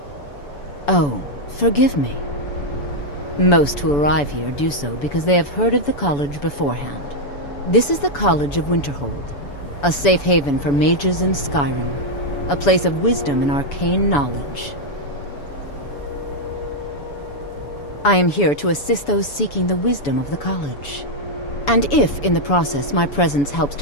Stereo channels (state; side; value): late; right; 7.0 ms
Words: Oh, forgive me. Most who arrive here do so because they have heard of the college beforehand. This is the College of Winterhold, a safe haven for mages in Skyrim, a place of wisdom and arcane knowledge. I am here to assist those seeking the wisdom of the college. And if, in the process, my presence helps